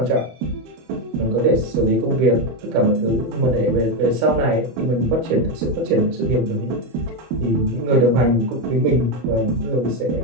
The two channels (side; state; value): left; late; 25 ms